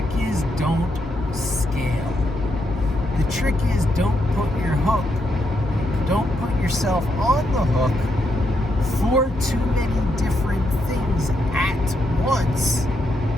is don't scale. The trick is don't put yourself on the hook for too many different things at once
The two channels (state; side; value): normal; both; correlation 0.80